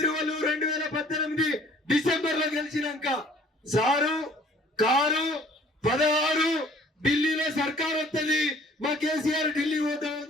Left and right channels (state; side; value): normal; both; correlation 0.54